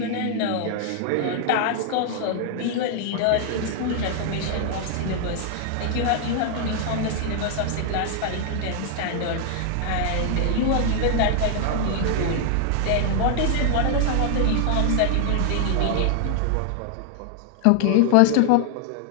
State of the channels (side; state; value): both; different; correlation 0.00